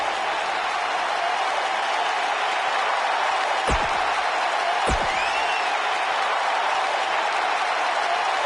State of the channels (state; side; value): identical; both; correlation 1.00